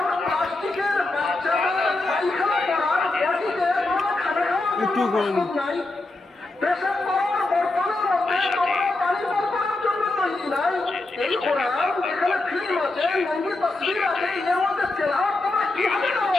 প্লাস্টিকের বাচ্চাদের পায়খানা করার পটিতে তোমরা খানা খাওয়ার জন্য নাই পেশাব করার বর্তনের মধ্যে তোমরা পানি বর্তনের জন্য তৈরি নাই এই কোরআন যেখানে ফিল্ম আছে নঙ্গি তসবির আছে এর মধ্যে তেলাওয়াত তোমরা কিভাবে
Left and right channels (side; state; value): right; quieter; 3.0 dB